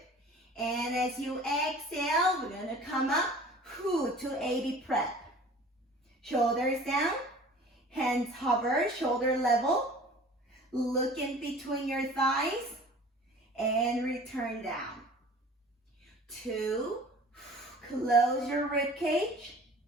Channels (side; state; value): both; normal; correlation 0.45